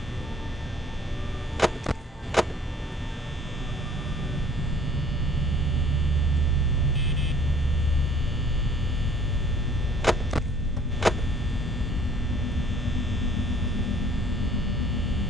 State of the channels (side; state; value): both; normal; correlation 0.56